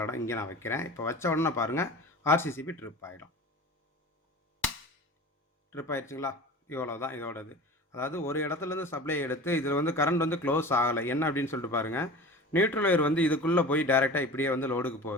இடம் இங்கே நான் வைக்கிறேன். இப்போ வச்ச உடனே பாருங்கள் ஆர்சிசிபி ட்ரிப் ஆகிடும். ட்ரிப் ஆகிடுச்சுங்களா? இவ்வளோ தான் இதோடது. அதாவது ஒரு இடத்துலேருந்து சப்ளை எடுத்து இதில் வந்து கரண்ட் வந்து க்ளோஸ் ஆகலை. என்ன அப்படின்னு சொல்லிட்டு பாருங்கள், நியூட்ரல் ஒயர் வந்து இதுக்குள்ளே போய் டேரெக்டாக இப்படியே வந்து லோடுக்கு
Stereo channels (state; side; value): normal; both; correlation 0.36